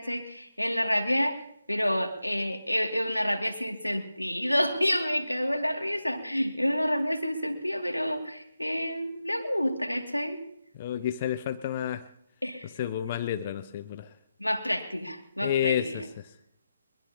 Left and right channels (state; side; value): inverted; both; correlation -0.89